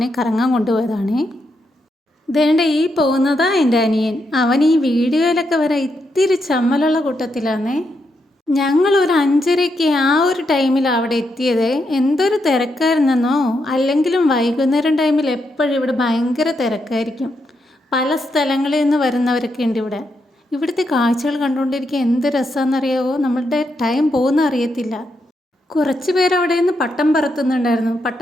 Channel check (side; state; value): both; normal; correlation 0.81